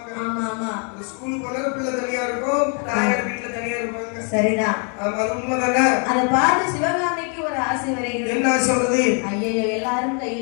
ஆமா ஆமா. ஸ்கூலுக்கு போனா பிள்ளை தனியா இருக்கும், தாயார் வீட்டுல தனியா இருப்பாங்க. சரிதான். ஆமா, அது உண்மைதானே. அதை பார்த்து சிவகாமிக்கு ஒரு ஆசை வருகிறது. என்ன சொல்றது? ஐயோ, எல்லாரும்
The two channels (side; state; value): right; quieter; 39.1 dB